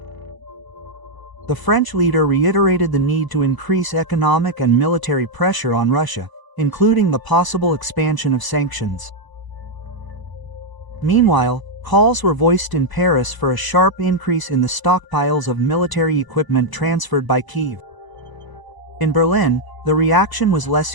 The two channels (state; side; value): late; right; 1.0 ms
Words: The French leader reiterated the need to increase economic and military pressure on Russia, including the possible expansion of sanctions. Meanwhile, calls were voiced in Paris for a sharp increase in the stockpiles of military equipment transferred by Kyiv. In Berlin, the reaction was less